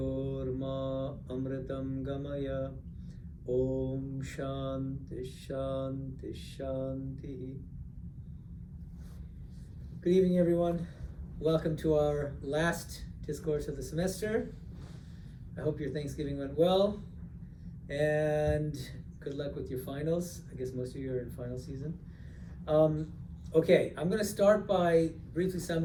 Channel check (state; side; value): identical; both; correlation 1.00